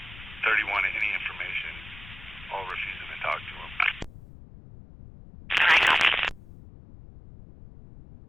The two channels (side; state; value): left; noise; rumble, 17 dB below the sound